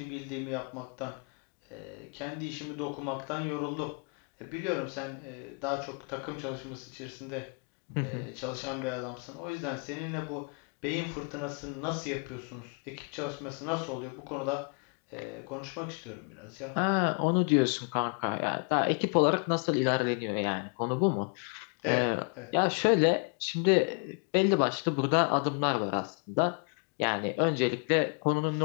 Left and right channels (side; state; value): right; quieter; 37.3 dB